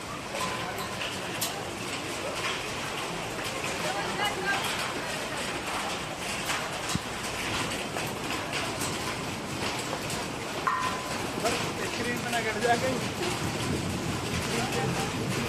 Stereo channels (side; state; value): both; identical; correlation 1.00